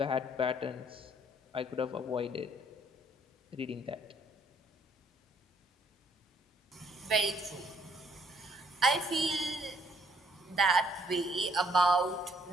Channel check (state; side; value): normal; both; correlation 0.65